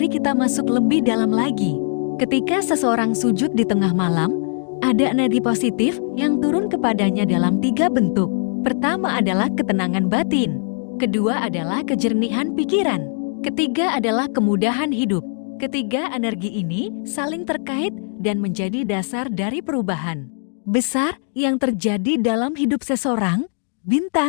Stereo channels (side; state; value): right; silent; digital silence